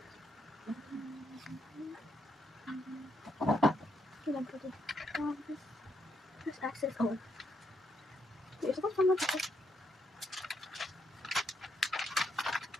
There's access. Oh, you're supposed to come with it.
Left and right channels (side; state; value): both; normal; correlation 0.77